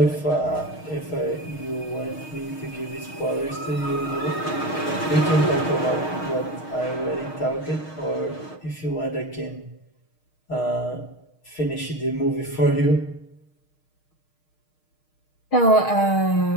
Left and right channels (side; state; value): right; late; 6.4 ms